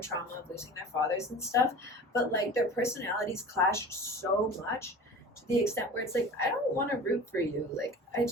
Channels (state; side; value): normal; both; correlation 0.38